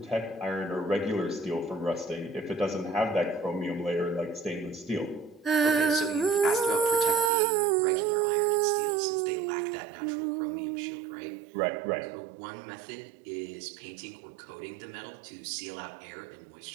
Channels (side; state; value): left; drops out; at 7.3 s